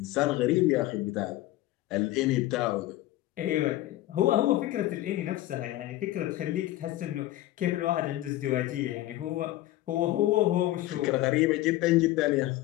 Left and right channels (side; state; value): right; quieter; 15.8 dB